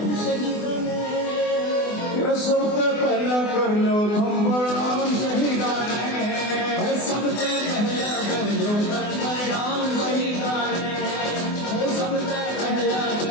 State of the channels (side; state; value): right; late; 24 ms